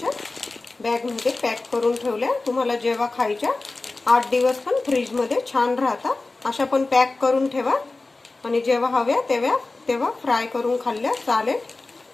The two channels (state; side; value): quieter; right; 3.4 dB